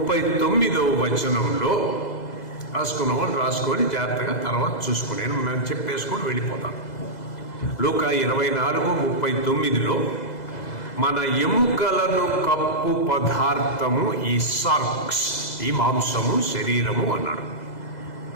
వచనంలో రాసుకున్న వాళ్ళు రాసుకొని జాగ్రత్తగా తర్వాత చూసుకుని మేము చెప్పేసుకొని వెళ్ళిపోతాం. లూకా 24:39లో మన ఎముకలను కప్పు పదార్థము ఈ సార్క్స్, ఈ మాంసము, శరీరము అన్నాడు.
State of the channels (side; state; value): right; late; 2.0 ms